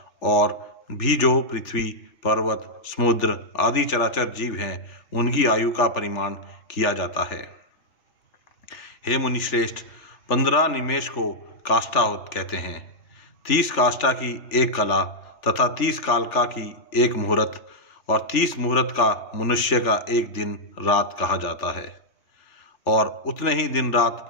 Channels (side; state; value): right; late; 3.4 ms